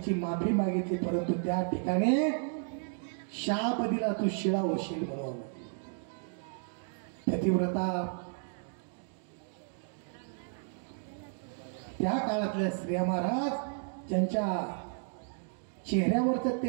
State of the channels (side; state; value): left; silent; 56 dB below the other